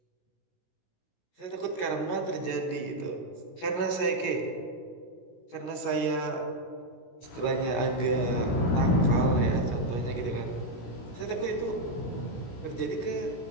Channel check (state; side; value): late; right; 16 ms